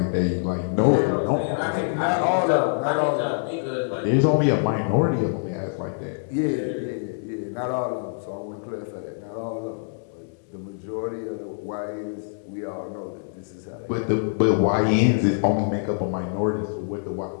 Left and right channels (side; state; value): right; silent; digital silence